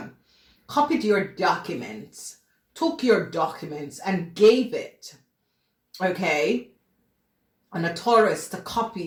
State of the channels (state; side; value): identical; both; correlation 1.00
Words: Copied your documents, took your documents and gave it, okay? And a Taurus to